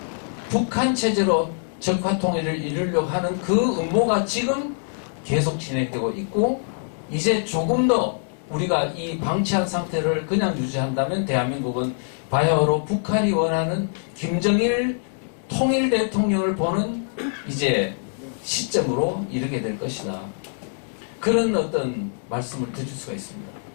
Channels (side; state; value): right; silent; 63 dB below the other